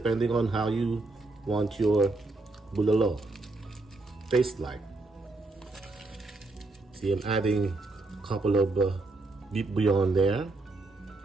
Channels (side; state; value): left; quieter; 3.2 dB